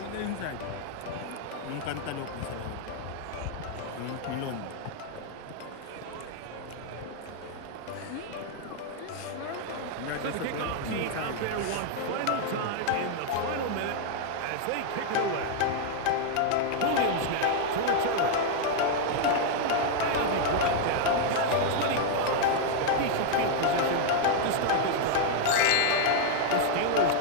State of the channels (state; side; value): different; both; correlation 0.00